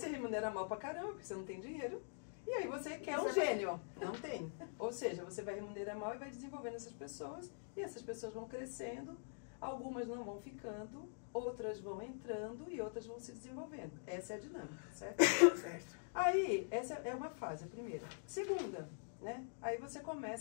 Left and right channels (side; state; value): right; silent; digital silence